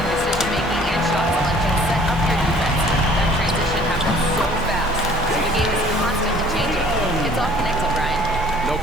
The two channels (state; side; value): normal; both; correlation 0.54